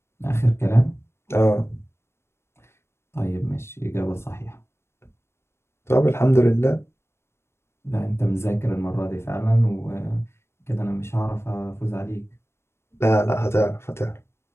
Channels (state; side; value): late; right; 0.12 ms